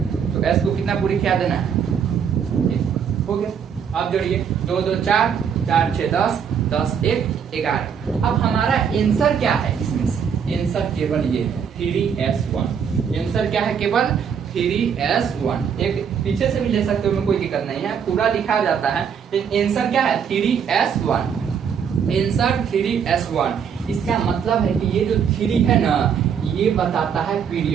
तो s को कितना पूरी खिला देना है 1, हो गया। अब जोड़िए 2 2 4, 4 6 10, 10 1 11। अब हमारा आंसर क्या है इसमें से, आंसर केवल ये है 3s1। आंसर क्या है केवल 3s1। एक पीछे से भी ले सकते हो, में कोई दिक्कत नहीं है, पूरा लिखा जाता है। आंसर क्या है 3s1, आंसर 3s1। इसका मतलब है कि ये जो 3 है ना ये बताता है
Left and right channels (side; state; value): left; quieter; 7.3 dB